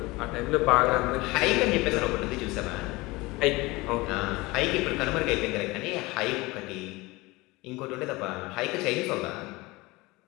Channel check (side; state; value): right; quieter; 22.1 dB